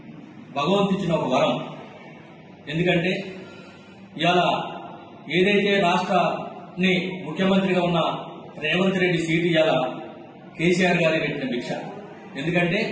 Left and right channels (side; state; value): both; identical; correlation 1.00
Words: భగవంతిచ్చిన ఒక వరం. ఎందుకంటే ఇవాళ ఏదైతే రాష్ట్రాన్ని ముఖ్యమంత్రిగా ఉన్న రేవంత్ రెడ్డి సీటు ఇవాళ కేసీఆర్ గారి పెట్టిన భిక్ష. ఎందుకంటే